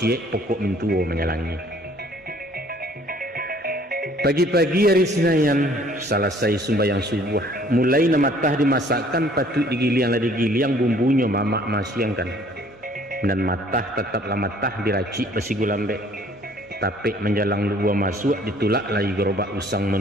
pokok mintuo menyalangi. Pagi-pagi hari Senayan, selesai sembahyang subuh, mulai namatah dimasakkan patut digiliang bumbunya mamak masiangkan. Dan matah tetaplah matah diracik besi gulambek. Tapi menjalang luar masuk ditulak lagi gerobak usang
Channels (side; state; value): both; normal; correlation 0.57